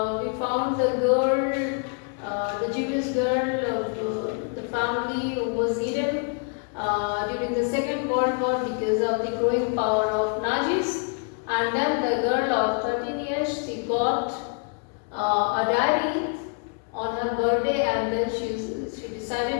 found the girl, the Jewish girl of the family who was eaten during the Second World War because of the growing power of Nazis, and then the girl of 13 years, she got a diary on her birthday, and then she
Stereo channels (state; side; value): quieter; right; 38.3 dB